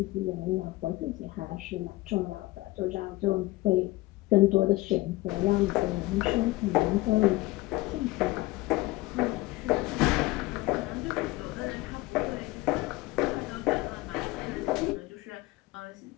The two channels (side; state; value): right; quieter; 19.6 dB